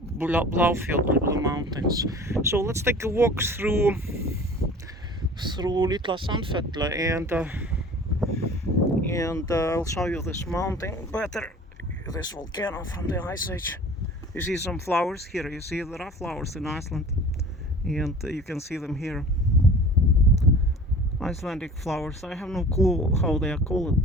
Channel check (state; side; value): normal; both; correlation 0.43